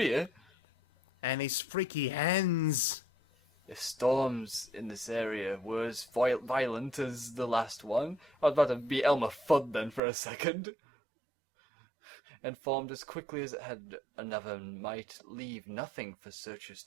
And his freaky hands. If storms in this area were as violent as the last one, I was about to be Elmer Fudd then for a second. And formed as quickly as it had, another might leave nothing for searchers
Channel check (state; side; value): drops out; left; at 10.0 s